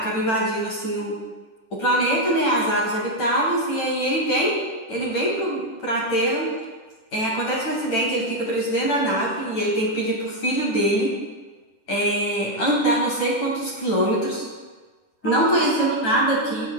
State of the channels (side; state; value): right; late; 10 ms